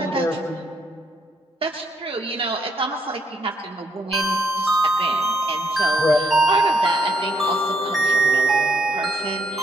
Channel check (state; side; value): normal; both; correlation 0.74